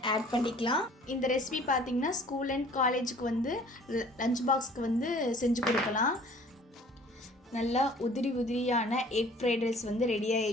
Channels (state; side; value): normal; both; correlation 0.52